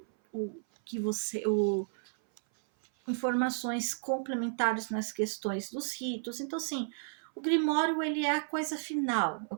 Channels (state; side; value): silent; left; 56 dB below the other